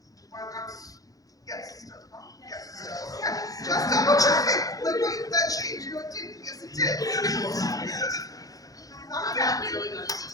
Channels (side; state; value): right; late; 0.17 ms